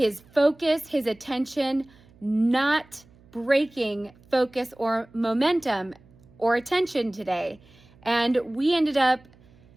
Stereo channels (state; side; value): noise; right; hum, 28 dB below the sound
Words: focus, his attention, not breaking focus or momentum or attention today. And we ended up,